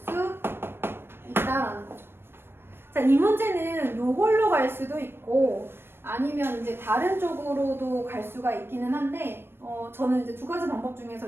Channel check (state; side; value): late; left; 0.11 ms